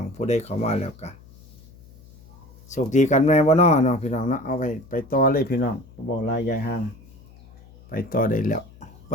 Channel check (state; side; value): noise; left; hum, 23 dB below the sound